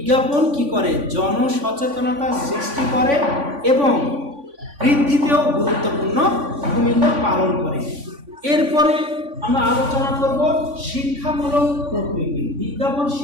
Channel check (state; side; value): late; left; 3.5 ms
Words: কি করে? জনসচেতনতা সৃষ্টি করে এবং বৃদ্ধিতেও গুরুত্বপূর্ণ ভূমিকা পালন করে। এরপরে আমরা আলোচনা করব শিক্ষামূলক প্রকৃতি। বিজ্ঞাপন